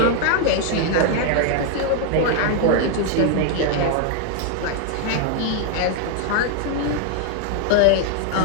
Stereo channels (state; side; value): different; both; correlation 0.00